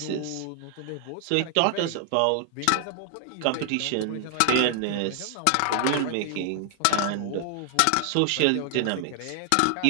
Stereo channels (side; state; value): both; different; correlation 0.00